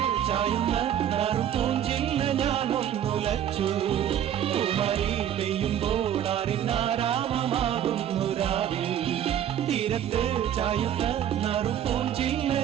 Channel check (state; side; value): quieter; left; 10.3 dB